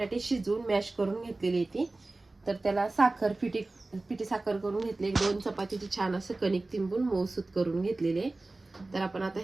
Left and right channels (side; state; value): left; quieter; 3.1 dB